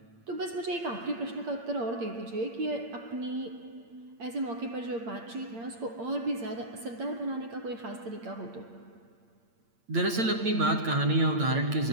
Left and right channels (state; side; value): late; left; 8.7 ms